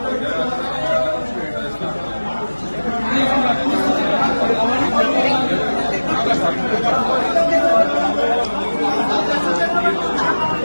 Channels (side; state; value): both; inverted; correlation -1.00